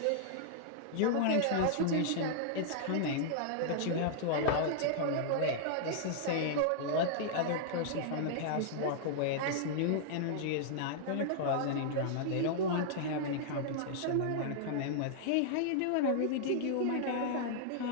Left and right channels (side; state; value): both; different; correlation -0.01